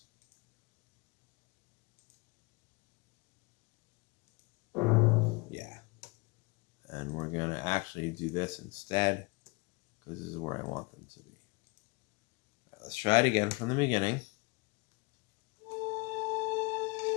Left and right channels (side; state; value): right; quieter; 27.6 dB